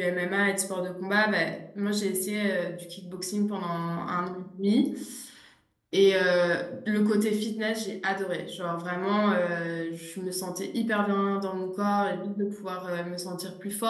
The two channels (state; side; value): identical; both; correlation 1.00